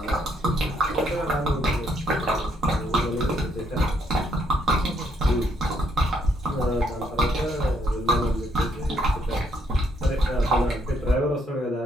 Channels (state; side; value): normal; both; correlation 0.71